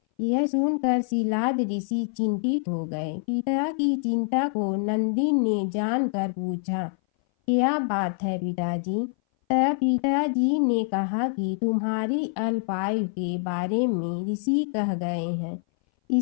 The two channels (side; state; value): right; silent; 58 dB below the other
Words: यह सुनकर शीलाद ऋषि चिंतित हो गए। पिता की चिंता को नंदी ने जानकर पूछा, क्या बात है पिताजी? तब पिताजी ने कहा कि तुम्हारी अल्पायु के बारे में ऋषि कह गए हैं,